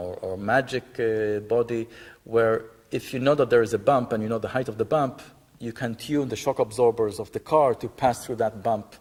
magic body, where if you know that there is a bump and you know the height of the bump, you can tune the shock absorbers of the car to pass through that bump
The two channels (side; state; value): both; identical; correlation 1.00